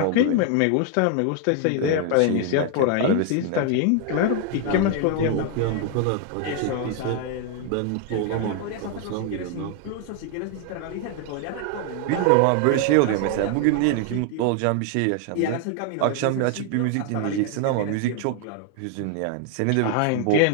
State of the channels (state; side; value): different; both; correlation 0.00